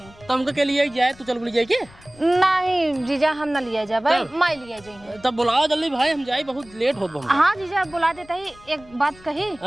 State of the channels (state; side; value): noise; left; rumble, 24 dB below the sound